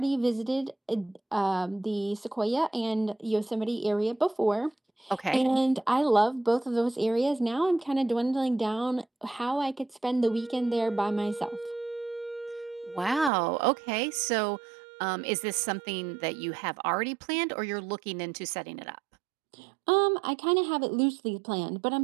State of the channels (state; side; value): drops out; left; at 13.3 s